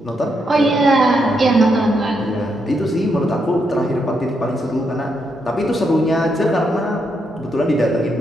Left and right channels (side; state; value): both; normal; correlation 0.80